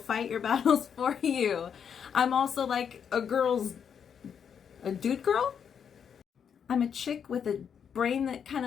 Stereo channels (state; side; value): quieter; right; 7.5 dB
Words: fight your battles for you. I'm also like a dude girl. I'm a chick with a brain that kind